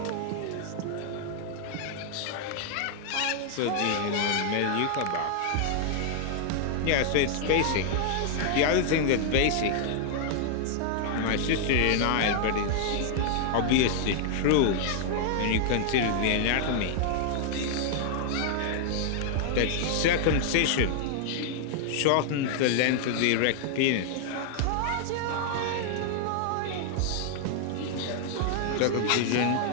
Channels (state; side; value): different; both; correlation 0.00